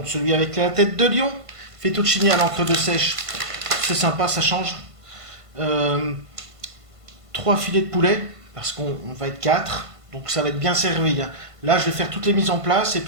celui avec la tête de lion. Fettuccini à l'encre de sèche. C'est sympa, ça change. Euh, 3 filets de poulet, parce qu'on va être 4. Donc ça va être bien servi, hein. Là, je vais faire toutes les mises en place et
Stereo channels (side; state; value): left; late; 1.5 ms